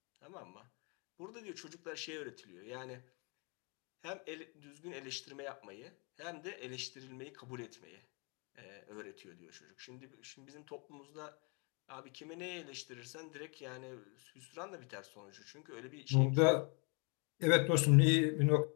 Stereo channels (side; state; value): right; quieter; 36.9 dB